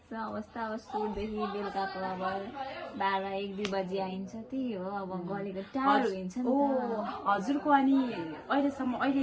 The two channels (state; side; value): identical; both; correlation 1.00